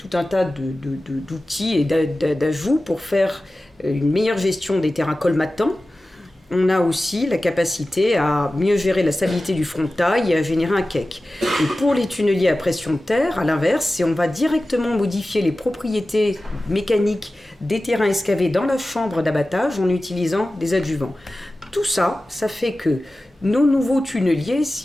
un tas d'outils et d'ajouts pour faire une meilleure gestion des terrains colmatants, on a aussi la capacité à mieux gérer la stabilité du frontail et à générer un cake. Et pour les tunneliers à pression de terre, à l'inverse, on va directement modifier les propriétés mécaniques des terrains excavés dans la chambre d'abattage en utilisant des adjuvants. Tout ça, ça fait que nos nouveaux tunneliers,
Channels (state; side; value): normal; both; correlation 0.95